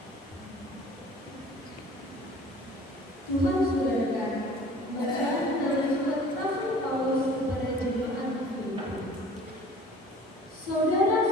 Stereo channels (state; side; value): normal; both; correlation 0.47